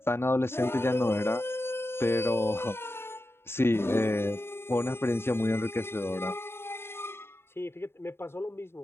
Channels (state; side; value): late; right; 0.11 ms